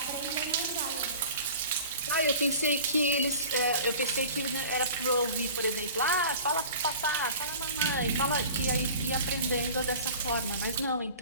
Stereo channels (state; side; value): inverted; both; correlation -0.42